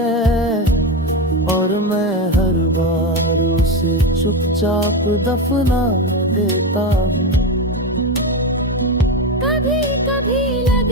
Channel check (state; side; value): normal; both; correlation 0.15